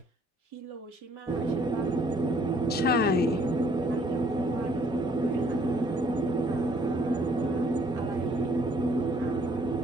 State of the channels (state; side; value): normal; both; correlation 0.62